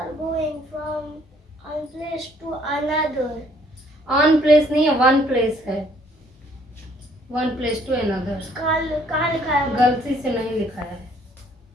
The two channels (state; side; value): normal; both; correlation 0.63